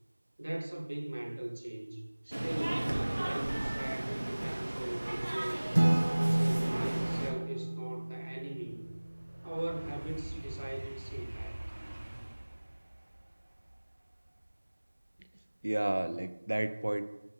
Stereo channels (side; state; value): both; inverted; correlation -1.00